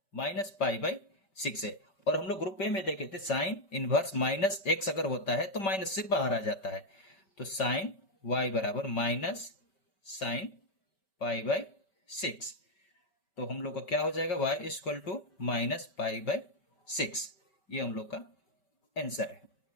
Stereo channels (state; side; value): late; right; 5.2 ms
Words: -π/6 है। और हम लोग ग्रुप ए में देखे थे साइन इनवर्स -x अगर होता है तो माइनस से बाहर आ जाता है। तो साइन y बराबर माइनस साइन π/6। तो हम लोग का क्या हो जाएगा, y इक्वल टू -π/6। ये हम लोग का आंसर है।